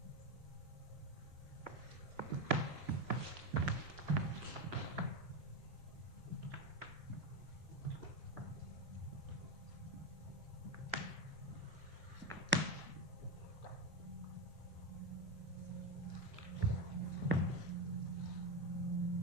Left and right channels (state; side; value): normal; both; correlation 0.13